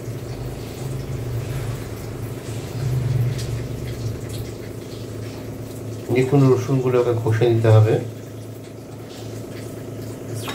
দেখুন রসুনগুলোকে ঘষে নিতে হবে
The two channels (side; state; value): both; identical; correlation 1.00